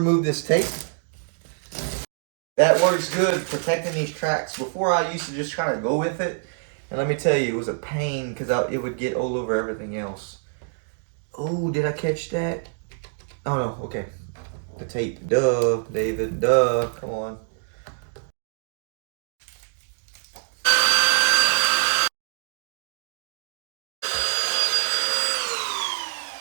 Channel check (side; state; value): left; silent; digital silence